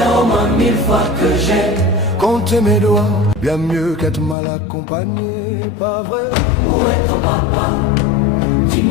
au moins 1000 fois que j'ai compté mes doigts, bien mieux qu'être mal accompagné, pas vrai? Où est ton papa?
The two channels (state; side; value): drops out; right; at 4.4 s